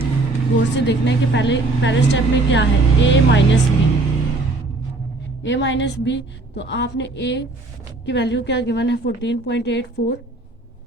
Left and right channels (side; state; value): left; quieter; 3.2 dB